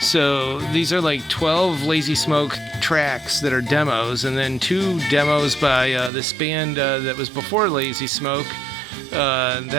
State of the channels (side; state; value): left; drops out; at 6.1 s